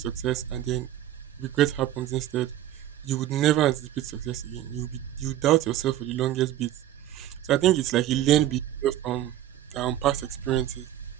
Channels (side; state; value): left; quieter; 12.6 dB